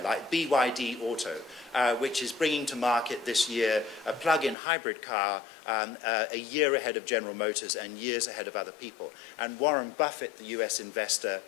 like BYD Auto, which is bringing to market this year a plug-in hybrid car a year ahead of General Motors and years ahead of other people. And Warren Buffett, the US investor,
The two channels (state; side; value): drops out; right; at 4.5 s